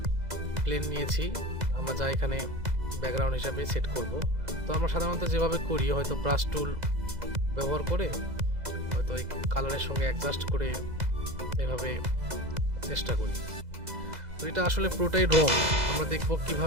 প্লেন নিয়েছি, আমরা যা এখানে ব্যাকগ্রাউন্ড হিসাবে সেট করব। তো আমরা সাধারণত যেভাবে করি, হয়তো ব্রাশ টুল ব্যবহার করে হয়তো এই কালারের সঙ্গে অ্যাডজাস্ট করে এভাবে চেষ্টা করি। তো এটা আসলে পুরোটাই রং। আমরা দেখব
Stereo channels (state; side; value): late; left; 2.0 ms